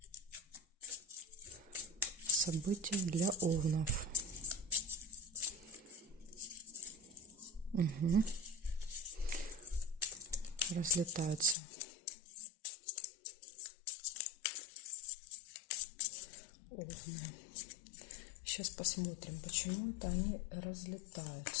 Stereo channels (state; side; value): drops out; right; at 11.6 s